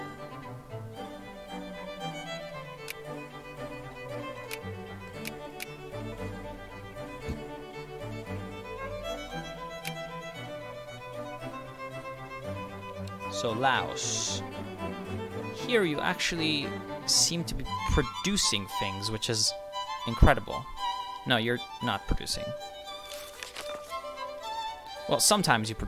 So Laos. Here you actually seem to be producing things, which is incredible. No, you're not producing. Well, sometimes you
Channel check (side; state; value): both; identical; correlation 1.00